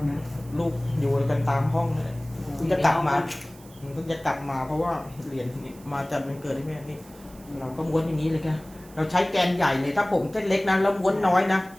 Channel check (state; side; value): noise; right; hiss, 24 dB below the sound